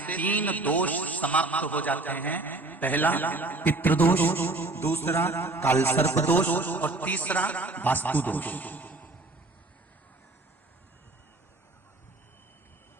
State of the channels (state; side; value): quieter; left; 3.1 dB